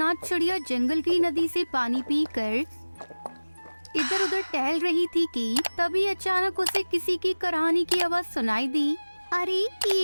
चिड़िया जंगल की नदी से पानी पीकर इधर उधर टहल रही थी कि तभी अचानक उसे किसी की कराहनी की आवाज सुनाई दी। अरे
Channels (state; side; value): inverted; both; correlation -1.00